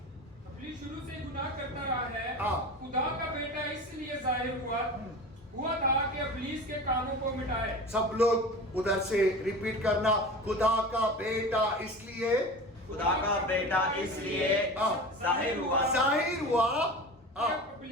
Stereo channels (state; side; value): normal; both; correlation 0.33